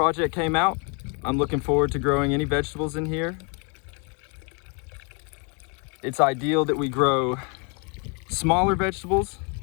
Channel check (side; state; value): right; quieter; 35.3 dB